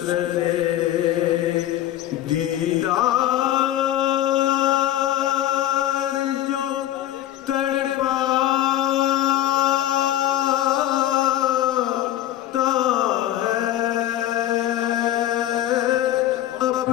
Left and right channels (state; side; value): quieter; right; 13.1 dB